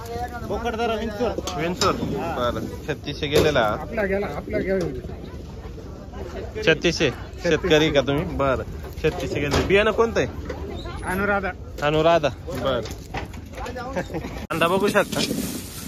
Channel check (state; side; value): identical; both; correlation 1.00